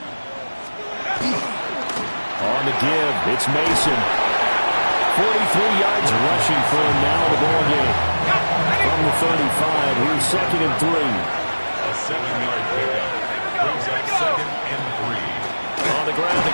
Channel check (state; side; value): inverted; both; correlation -1.00